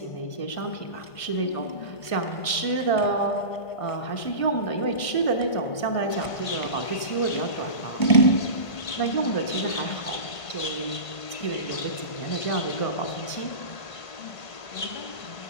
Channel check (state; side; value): late; right; 1.5 ms